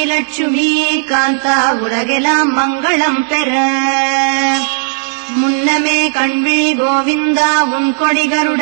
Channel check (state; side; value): silent; left; digital silence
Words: லட்சுமி காந்தா உலகெல்லாம் மங்களம் பெற. முன்னமே கண்விழி கோவிந்தா உன் கொடி